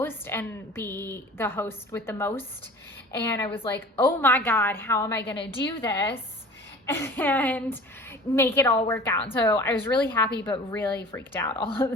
and be the host with the most. And I was like, oh my God, how am I going to do this and make it all work out? So I was really happy, but really freaked out all at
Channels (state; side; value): normal; both; correlation 0.42